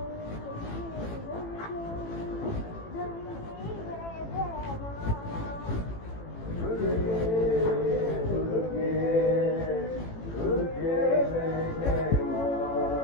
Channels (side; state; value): right; late; 18 ms